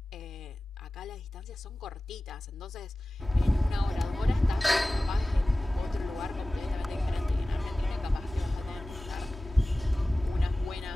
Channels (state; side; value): normal; both; correlation 0.97